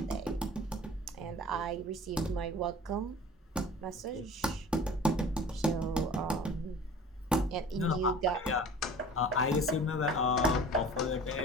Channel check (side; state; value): both; normal; correlation 0.43